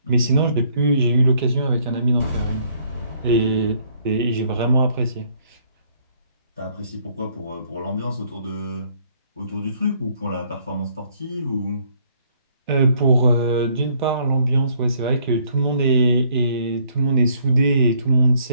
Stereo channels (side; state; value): both; inverted; correlation -0.64